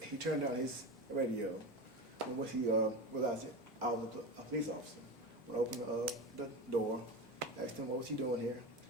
turned down his radio. And once he realized that I was a police officer, when I opened the door, asked him what was he doing here.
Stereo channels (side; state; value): both; normal; correlation 0.24